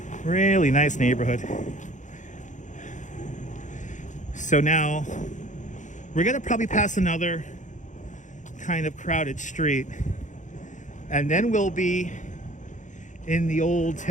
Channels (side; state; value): right; late; 0.36 ms